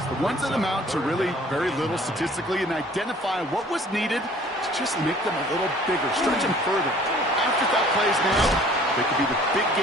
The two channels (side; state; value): both; normal; correlation 0.53